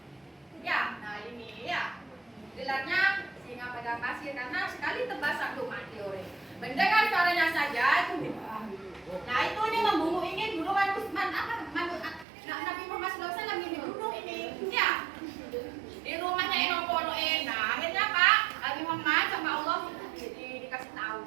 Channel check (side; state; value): left; drops out; at 12.2 s